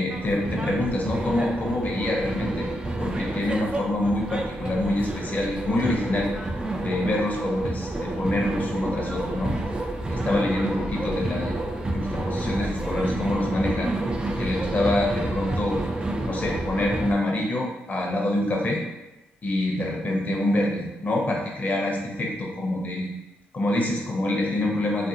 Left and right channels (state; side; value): normal; both; correlation 0.83